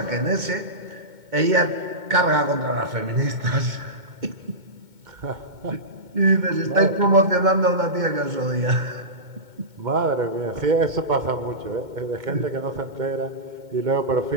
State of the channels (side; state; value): left; late; 2.2 ms